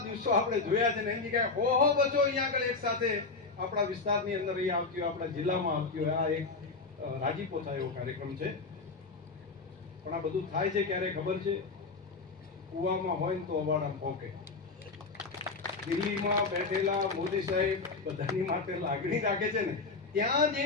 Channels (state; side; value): quieter; right; 4.1 dB